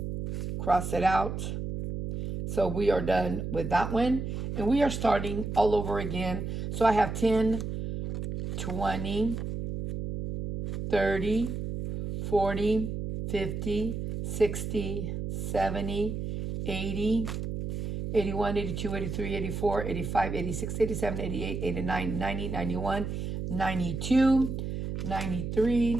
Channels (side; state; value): right; noise; hum, 4 dB below the sound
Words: cross it out. So we are done with that one. And we are starting all over again. So I have 10, 20, 30, 40, 50, 60, 70, 80, 81, 82, 83, 84, 85, 86, 87, 88, 89, 90, 91, 92, 93,